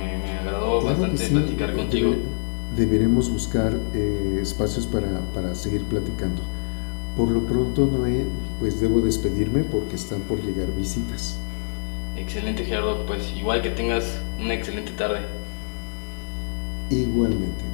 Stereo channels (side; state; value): right; silent; digital silence